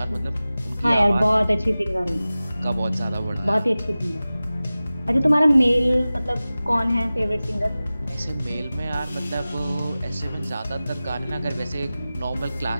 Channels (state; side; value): inverted; both; correlation -0.97